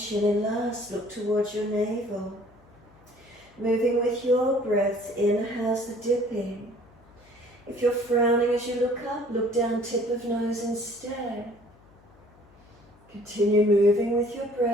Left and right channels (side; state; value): left; noise; hum, 28 dB below the sound